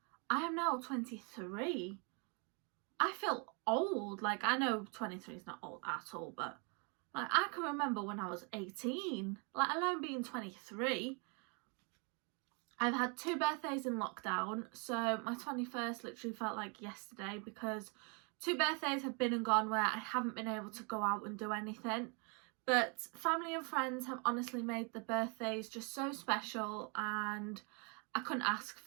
I am now 23. I feel old. Like, I know 23 is not old at all, but like, I can remember when I was 18, let alone being 23. I've had 2 birthdays in lockdown, so my 21st literally felt like yesterday because 2 birthdays have been and gone where I haven't been able to go out and do anything. But family and friends have honestly made the birthdays just so special, and I couldn't ask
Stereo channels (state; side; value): quieter; left; 34.3 dB